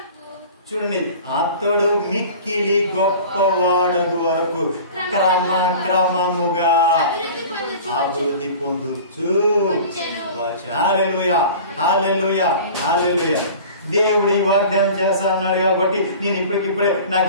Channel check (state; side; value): inverted; both; correlation -0.41